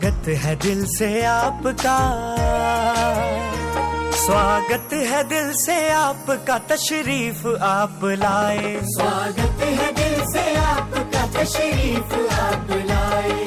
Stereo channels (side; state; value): both; identical; correlation 1.00